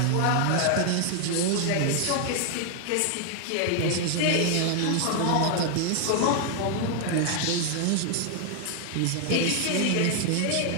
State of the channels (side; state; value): both; different; correlation 0.00